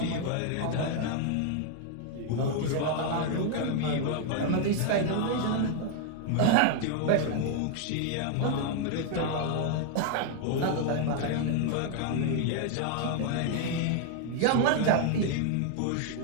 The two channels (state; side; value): different; both; correlation 0.00